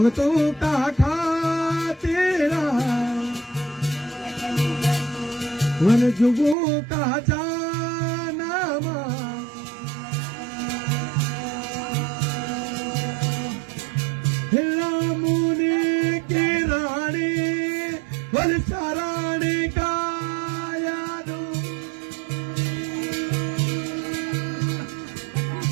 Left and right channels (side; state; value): left; drops out; at 6.6 s